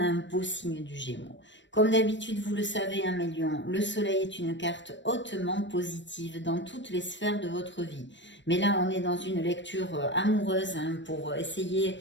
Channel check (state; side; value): late; right; 0.53 ms